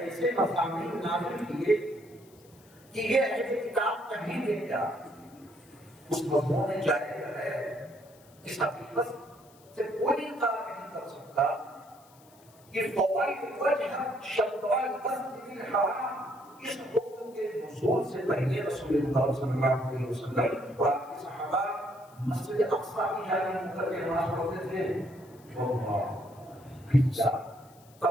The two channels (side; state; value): left; noise; hiss, 27 dB below the sound